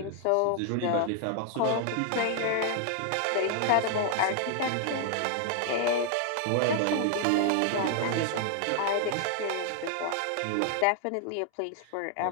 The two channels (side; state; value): both; different; correlation 0.00